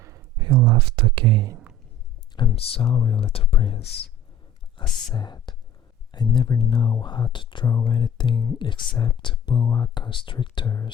He laughed again. I'm sorry, little prince, I said. I never know how to draw anything except boa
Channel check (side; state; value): both; normal; correlation 0.45